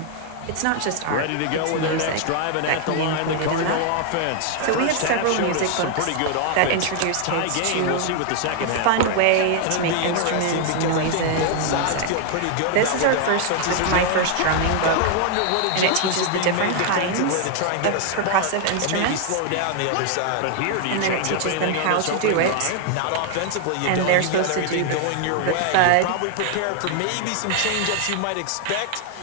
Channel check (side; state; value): both; different; correlation 0.00